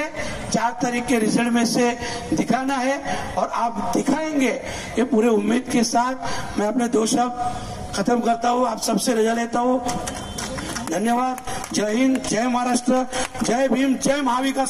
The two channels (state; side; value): identical; both; correlation 1.00